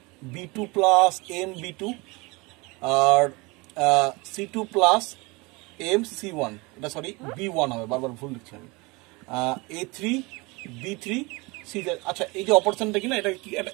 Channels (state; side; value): quieter; left; 25.7 dB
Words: b2 plus M b2 আর c2 প্লাস এম c1। এটা সরি b1 হবে, বারবার ভুল লিখছি আমি। a3 b3 c3। আচ্ছা, এই যে অপারেশনটা কি না,